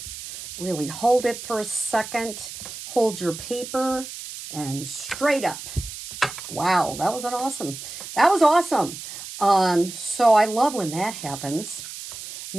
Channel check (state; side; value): noise; right; hiss, 11 dB below the sound